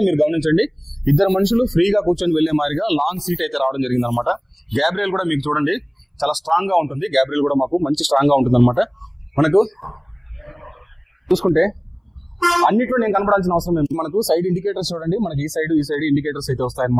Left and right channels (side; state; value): both; identical; correlation 1.00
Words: మీరు గమనించండి, 2 మనుషులు ఫ్రీగా కూర్చొని వెళ్లే మాదిరిగా లాంగ్ సీట్ అయితే రావడం జరిగింది అనమాట. గ్యాబ్రియల్ కూడా మీకు చూడండి చాలా స్ట్రాంగ్ గా ఉంటుంది. గ్యాబ్రియల్ కూడా మాకు మంచి స్ట్రాంగ్ గా ఉంటుంది అనమాట. మనకు చూసుకుంటే అన్నిట్లో నేను కనపడాల్సిన అవసరం లేదు. మనకు సైడ్ ఇండికేటర్స్ చూడండి, మనకి ఈ సైడ్ ఇండికేటర్స్ అయితే